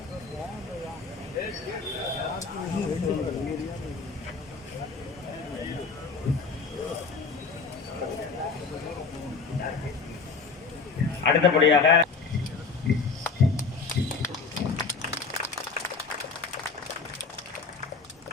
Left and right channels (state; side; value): quieter; right; 4.7 dB